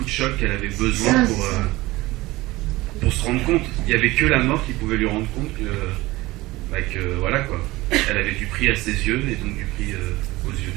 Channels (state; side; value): quieter; left; 19.6 dB